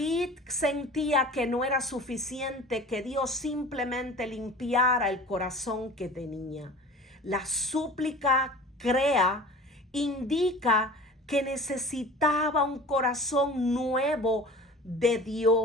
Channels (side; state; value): both; normal; correlation 0.41